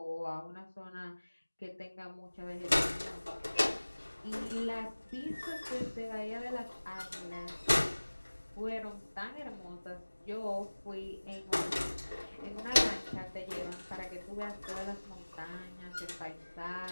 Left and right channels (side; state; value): both; inverted; correlation -1.00